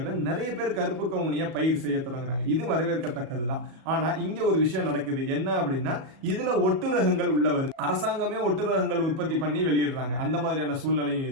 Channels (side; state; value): left; late; 37 ms